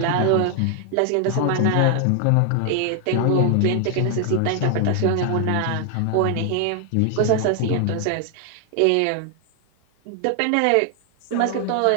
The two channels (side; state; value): both; different; correlation 0.00